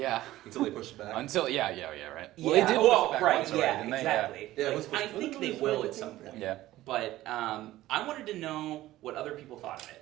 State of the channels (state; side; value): quieter; left; 15.7 dB